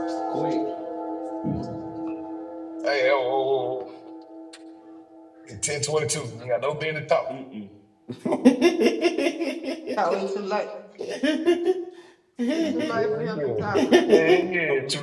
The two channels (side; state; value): both; identical; correlation 1.00